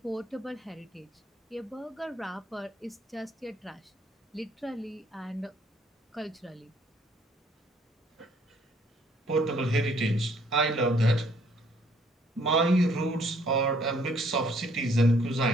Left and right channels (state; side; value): normal; both; correlation 0.63